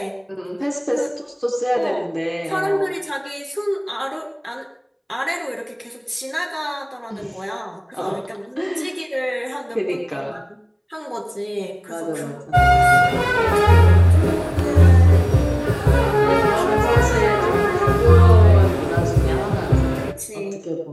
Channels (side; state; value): both; identical; correlation 1.00